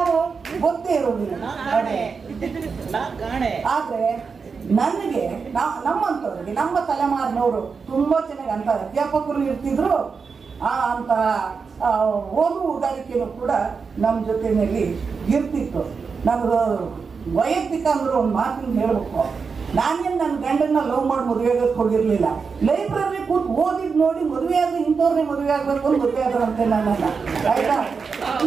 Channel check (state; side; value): quieter; left; 5.3 dB